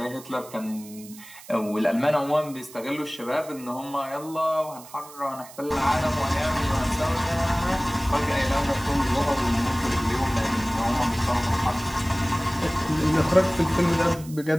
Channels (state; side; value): noise; right; hiss, 19 dB below the sound